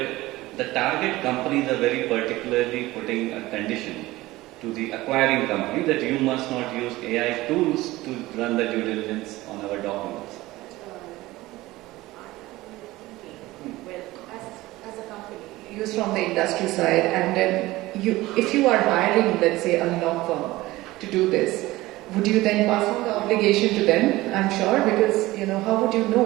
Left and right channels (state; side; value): quieter; left; 18.5 dB